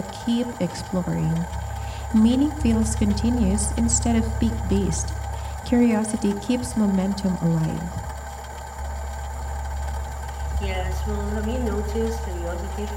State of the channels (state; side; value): identical; both; correlation 1.00